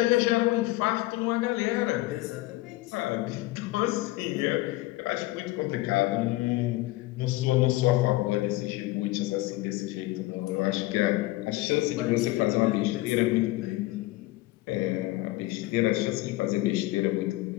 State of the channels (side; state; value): right; quieter; 18.8 dB